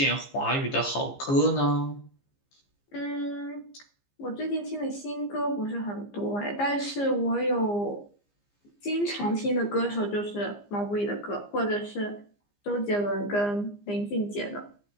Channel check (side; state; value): right; late; 15 ms